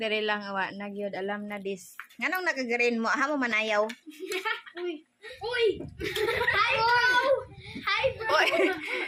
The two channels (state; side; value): identical; both; correlation 1.00